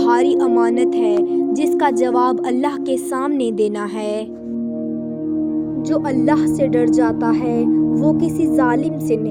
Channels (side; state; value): both; identical; correlation 1.00